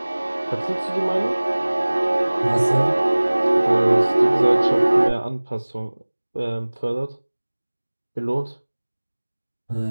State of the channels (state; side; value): inverted; both; correlation -1.00